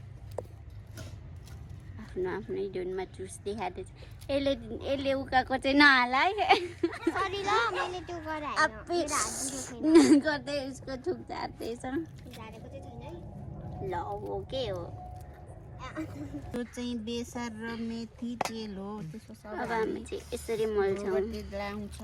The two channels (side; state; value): both; identical; correlation 1.00